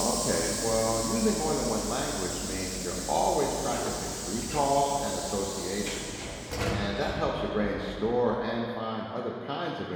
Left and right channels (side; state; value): both; identical; correlation 1.00